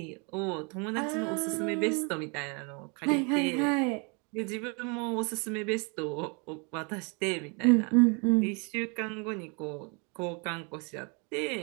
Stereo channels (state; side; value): quieter; left; 33.5 dB